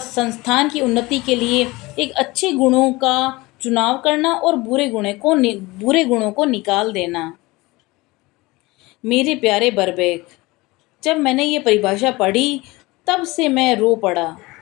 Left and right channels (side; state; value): right; quieter; 21.8 dB